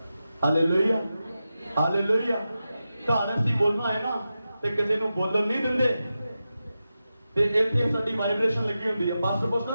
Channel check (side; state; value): both; inverted; correlation -0.92